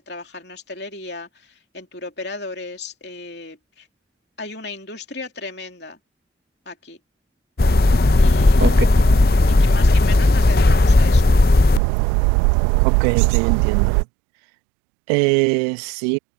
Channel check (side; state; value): left; drops out; at 11.8 s